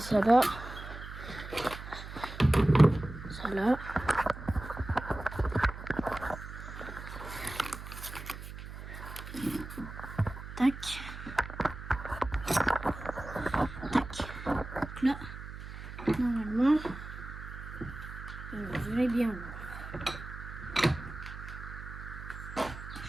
là. Ça là. Tac. Tac. Donc là, normalement, vous allez bien voir.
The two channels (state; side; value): noise; right; hum, 11 dB below the sound